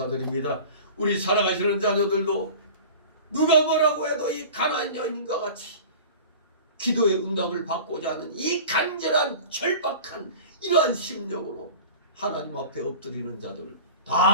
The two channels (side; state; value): both; inverted; correlation -0.38